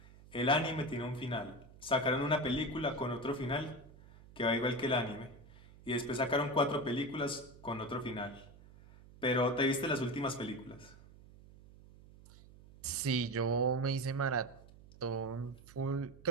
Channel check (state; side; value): noise; right; hum, 21 dB below the sound